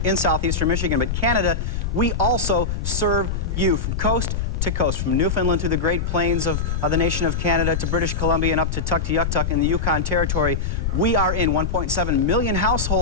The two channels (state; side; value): noise; left; rumble, 1 dB below the sound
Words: in southeastern Michigan. But Canada, we also serve you from coast to coast, from Newfoundland through the Great Plains of the nation of Canada to British Columbia and up to Tuktoyaktuk in the Yukon Territory. We are in 1.7 million